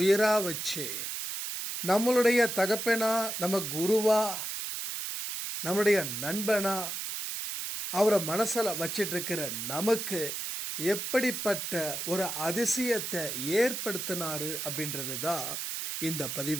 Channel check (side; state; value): right; noise; hiss, 4 dB below the sound